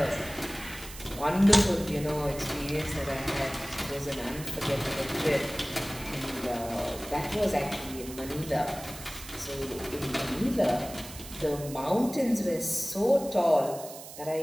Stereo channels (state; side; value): noise; right; hiss, 14 dB below the sound